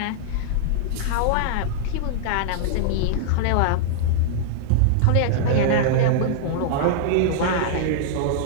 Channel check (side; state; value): both; different; correlation -0.01